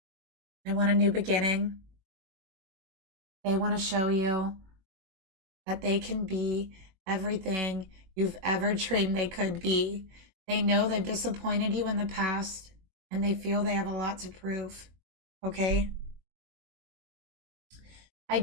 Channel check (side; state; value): left; late; 21 ms